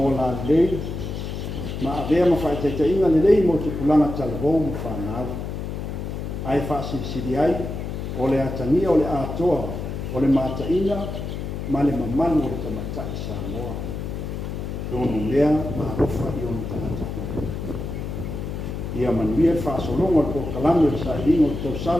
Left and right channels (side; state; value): left; noise; hum, 5 dB below the sound